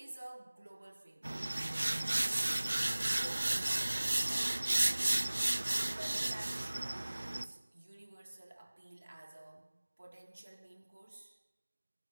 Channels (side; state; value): both; inverted; correlation -1.00